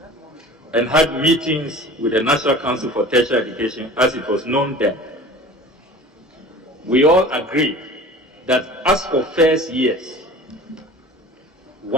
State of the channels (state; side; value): normal; both; correlation 0.41